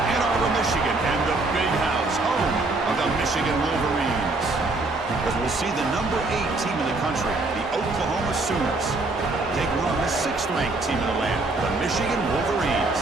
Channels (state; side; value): quieter; left; 3.2 dB